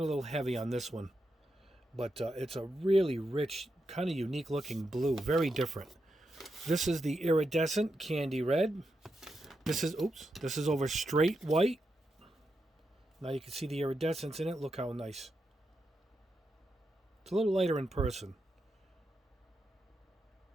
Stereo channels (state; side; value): normal; both; correlation 0.85